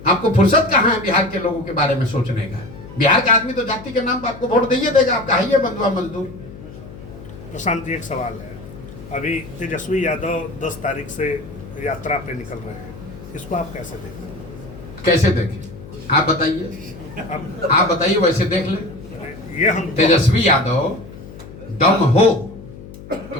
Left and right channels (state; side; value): noise; left; hum, 16 dB below the sound